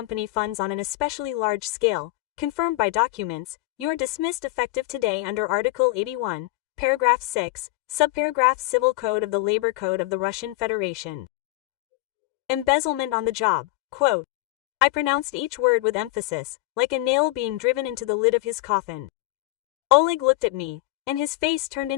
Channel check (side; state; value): right; quieter; 19.3 dB